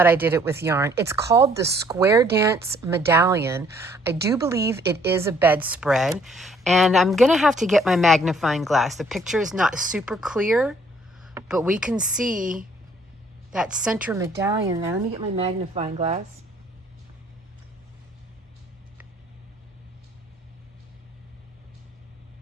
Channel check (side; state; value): both; normal; correlation 0.62